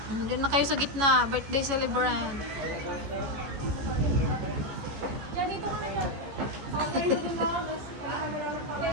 Doon na kayo sa gitna, birthday celebrant.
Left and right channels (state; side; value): late; left; 14 ms